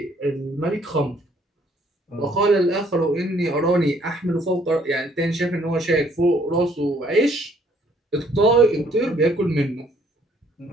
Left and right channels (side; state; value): both; normal; correlation 0.64